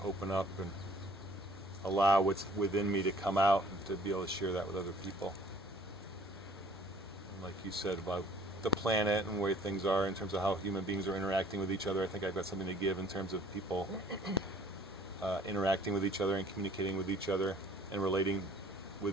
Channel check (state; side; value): normal; both; correlation 0.54